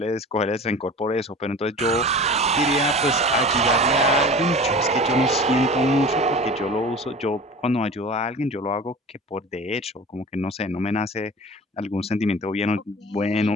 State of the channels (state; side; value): normal; both; correlation 0.38